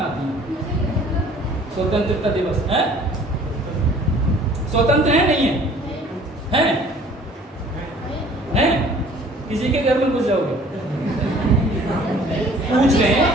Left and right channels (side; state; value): both; normal; correlation 0.53